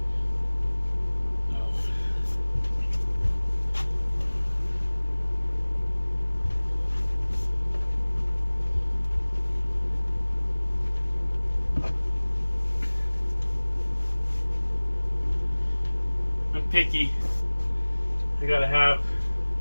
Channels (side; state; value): both; inverted; correlation -1.00